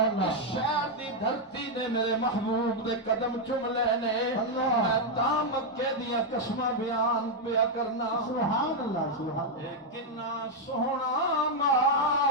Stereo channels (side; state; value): both; normal; correlation 0.00